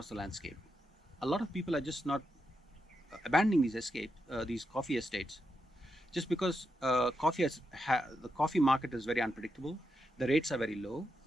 the landscape. A lot of people are just not abandoning these coffee estates, just because the coffee market is very unpredictable, the rates are very low,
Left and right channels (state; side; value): normal; both; correlation 0.85